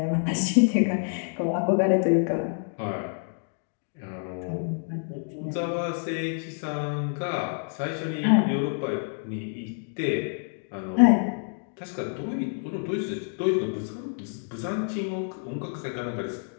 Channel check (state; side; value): silent; right; 60 dB below the other